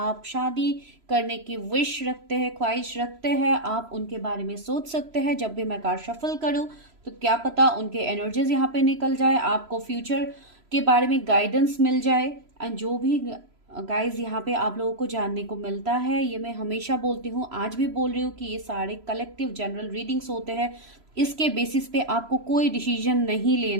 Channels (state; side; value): late; left; 3.0 ms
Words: शादी करने की विश रखते हैं, ख्वाहिश रखते हैं। आप उनके बारे में सोच सकते हैं। जब भी मैं कार्ड शफल करूं तो क्या पता उनके एनर्जीज यहाँ पे निकल जाए, आपको फ्यूचर के बारे में गाइडेंस मिल जाए। एंड जो भी गाइज यहाँ पे आप लोगों को जानने को मिलता है, ये मैं हमेशा बोलती हूँ, आज भी बोल रही हूँ कि ये सारे कलेक्टिव जनरल रीडिंग्स होते हैं। इसके बेसिस पे आपको कोई डिसीजन नहीं